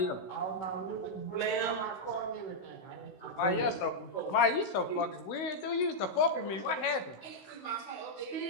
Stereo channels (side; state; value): right; late; 16 ms